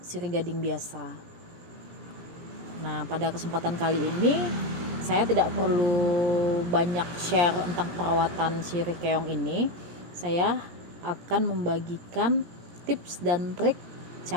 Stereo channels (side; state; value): left; late; 17 ms